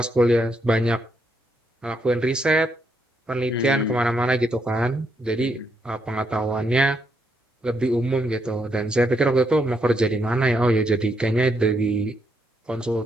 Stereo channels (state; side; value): normal; both; correlation 0.77